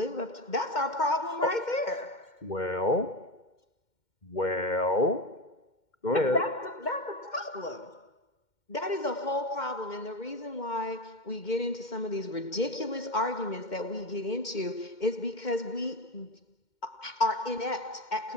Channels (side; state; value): right; late; 2.1 ms